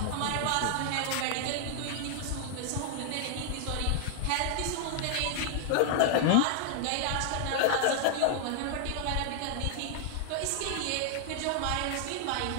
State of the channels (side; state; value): both; different; correlation -0.01